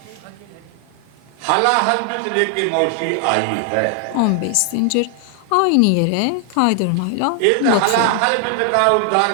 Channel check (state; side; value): different; both; correlation 0.00